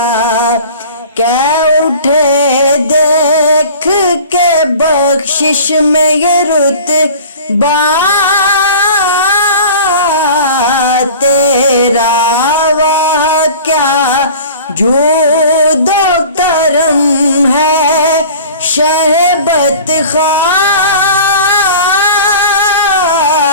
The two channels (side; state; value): both; inverted; correlation -0.41